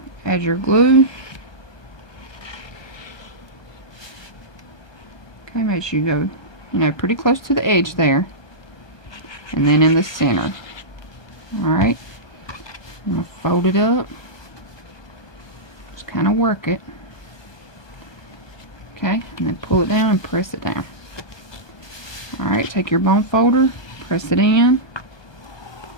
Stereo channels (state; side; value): late; right; 1.2 ms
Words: Add your glue. Okay, make sure you go, you know, pretty close to the edge there, and then in the center. Alright, I'm going to fold it up. Just kind of work it. Okay, and then pull it down and press it down. Alright, take your bone folder, press it in.